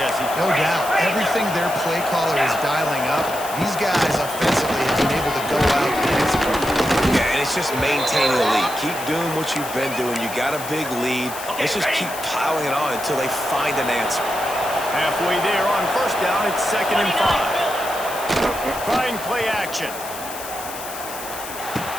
No doubt. Everything their play caller is dialing up, these guys offensively have been able to go out and execute. Yeah, and it's just maintaining the lead. Keep doing what you've been doing. You got a big lead. Let's just keep piling it on until they find an answer. Halfway there on first down, it's 2nd and 5. Trying play action.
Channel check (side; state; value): left; noise; hiss, 11 dB below the sound